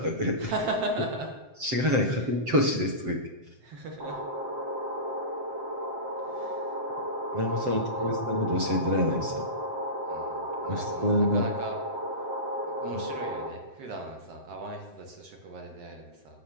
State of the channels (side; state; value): left; late; 7.7 ms